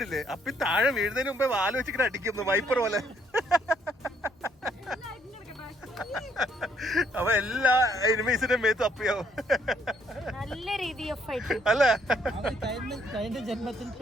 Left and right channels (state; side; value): normal; both; correlation 0.68